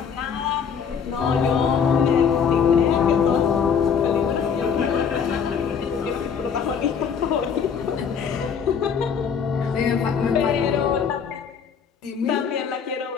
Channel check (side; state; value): right; quieter; 6.8 dB